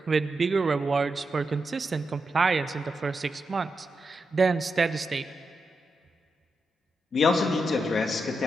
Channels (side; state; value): both; normal; correlation 0.86